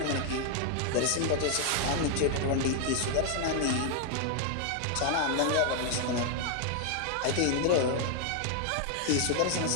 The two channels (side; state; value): both; different; correlation 0.00